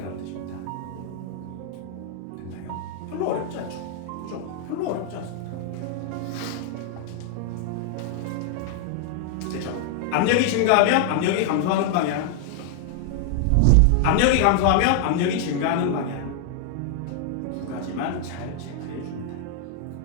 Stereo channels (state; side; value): different; both; correlation 0.00